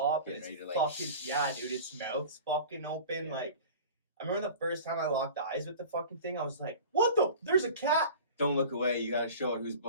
up and Getting it's ready to, like, fucking yeah, dude. Its mouth's fucking open. Yeah. Like I remember the first time I locked eyes with the fucking thing, I was like, what the? There's a cat. Don't look away. You gotta show it who's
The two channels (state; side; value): inverted; both; correlation -0.39